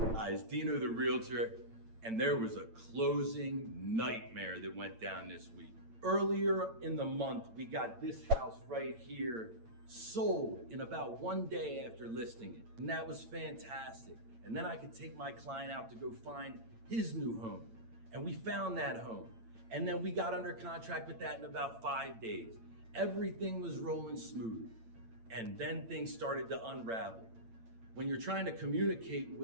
Dino the realtor, and there was a closing nightmare that went down this week. Earlier in the month, we got this house right here sold in about 1 day after listing it. And that was fantastic. And then I could take my client out to go find his new home. And we found that home. And then we got under contract with that in about 5 days. Everything was rolling smooth. And then things started to unravel. When you're trying to communicate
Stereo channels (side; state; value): left; late; 8.8 ms